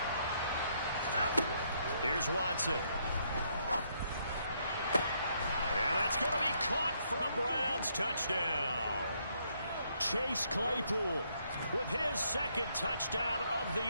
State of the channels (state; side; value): inverted; both; correlation -0.73